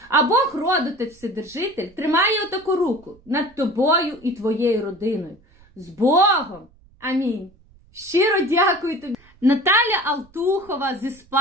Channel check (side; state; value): right; noise; rumble, 29 dB below the sound